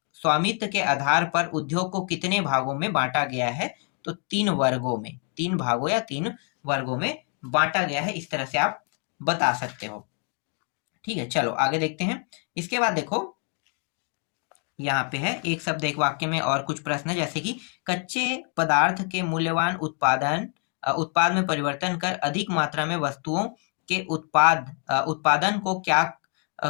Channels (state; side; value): quieter; right; 37.5 dB